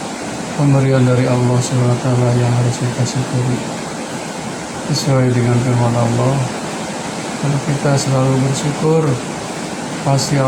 pemberian dari Allah SWT yang harus kita syukuri. Sesuai dengan firman Allah, kalau kita selalu bersyukur, pasti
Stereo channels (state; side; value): identical; both; correlation 1.00